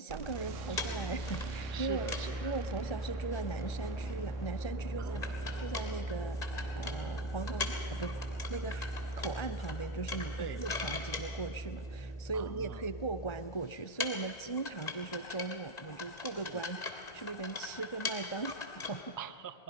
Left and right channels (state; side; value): late; right; 1.9 ms